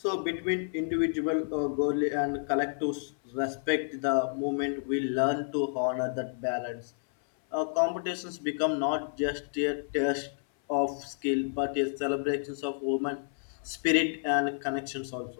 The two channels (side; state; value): right; silent; 56 dB below the other